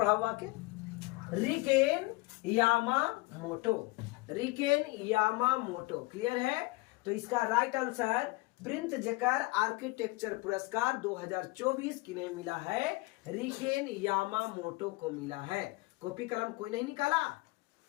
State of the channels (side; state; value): right; quieter; 23.3 dB